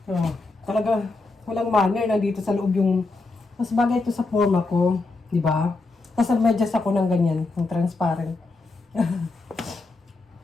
Oh, talaga, walang manner na dito sa loob yung, mas bagay ito sa forma ko. Diba? Tapos nag-medyas ako ng ganyan, ng transparent.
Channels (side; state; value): right; quieter; 3.5 dB